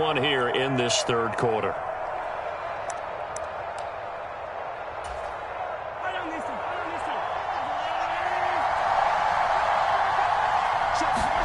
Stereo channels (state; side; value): identical; both; correlation 1.00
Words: here in this 3rd quarter.